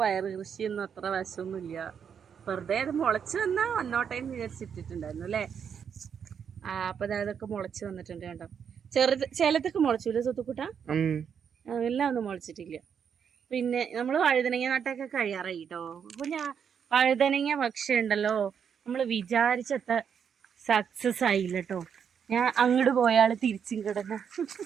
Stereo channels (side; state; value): left; quieter; 7.5 dB